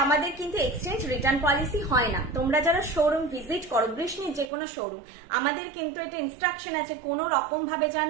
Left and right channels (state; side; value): drops out; left; at 4.5 s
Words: আমাদের কিন্তু এক্সচেঞ্জ রিটার্ন পলিসি হয় না। তোমরা যারা শোরুম ভিজিট করো, বৃষ্ণির যে কোনো শোরুম, আমাদের কিন্তু এটা ইনস্ট্রাকশন আছে কোনো রকম ভাবে